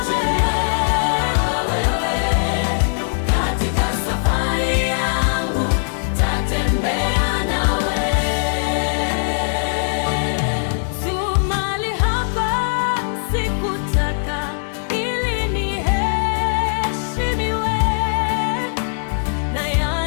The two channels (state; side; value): silent; right; digital silence